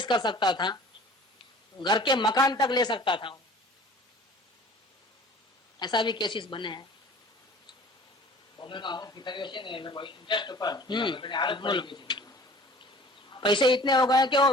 कर सकता था, घर के मकान तक ले सकता था। ऐसा भी केसेस बने हैं। पैसे इतने हो गए कि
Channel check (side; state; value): both; normal; correlation 0.47